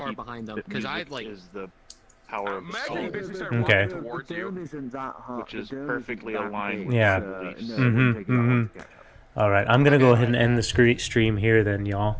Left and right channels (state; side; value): identical; both; correlation 1.00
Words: keep behind them? that Because I music like. is the power of the soul, Okay. Isn't that hard. which is perfectly aligned with Yeah. his beliefs. Alright, I'm gonna go ahead and end the stream here then, y'all.